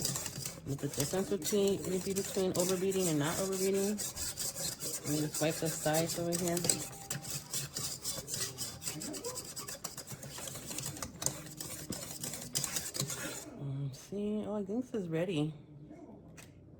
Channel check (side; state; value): both; identical; correlation 1.00